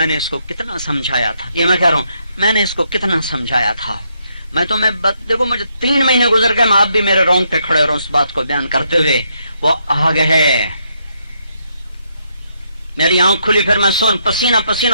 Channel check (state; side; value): inverted; both; correlation -0.76